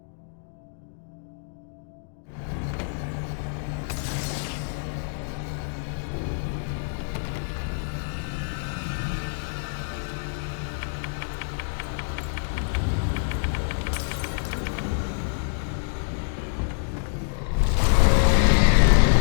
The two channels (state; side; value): silent; right; digital silence